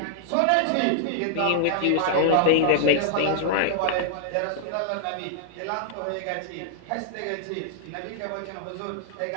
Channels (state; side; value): different; both; correlation -0.01